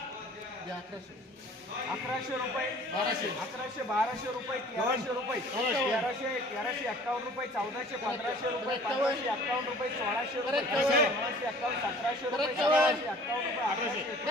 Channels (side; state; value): both; normal; correlation 0.50